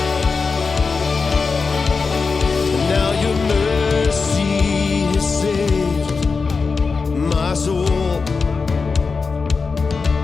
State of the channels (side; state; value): right; quieter; 4.7 dB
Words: Now your mercy has saved my soul,